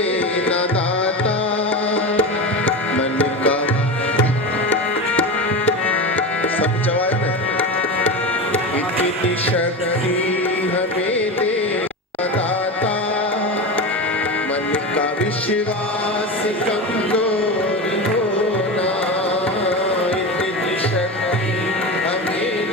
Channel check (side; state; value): both; normal; correlation 0.23